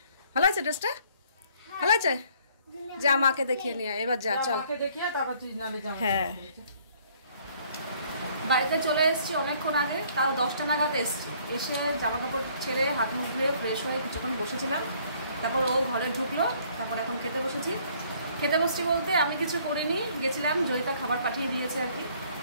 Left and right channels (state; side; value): inverted; both; correlation -0.61